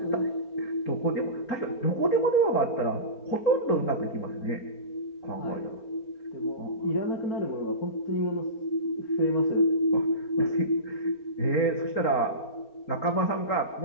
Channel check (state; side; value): late; right; 4.4 ms